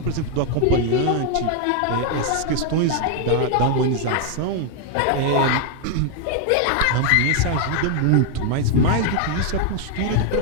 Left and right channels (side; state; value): both; different; correlation 0.00